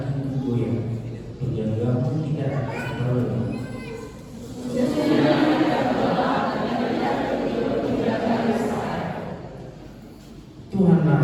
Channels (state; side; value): identical; both; correlation 1.00